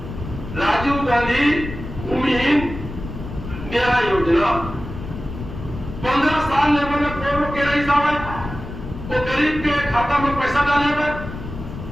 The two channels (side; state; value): left; noise; rumble, 10 dB below the sound